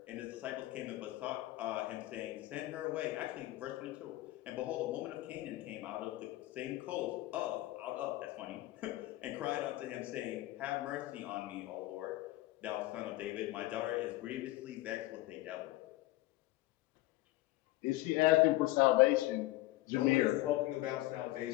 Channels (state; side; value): quieter; right; 17.9 dB